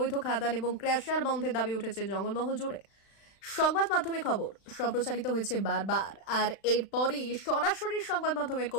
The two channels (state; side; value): late; right; 36 ms